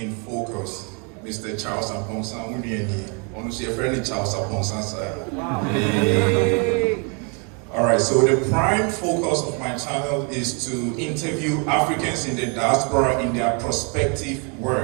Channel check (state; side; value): quieter; left; 35.5 dB